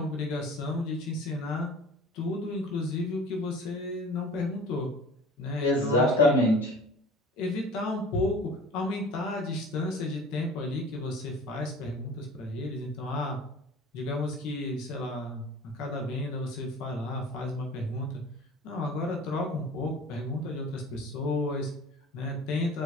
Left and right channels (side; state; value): both; normal; correlation 0.43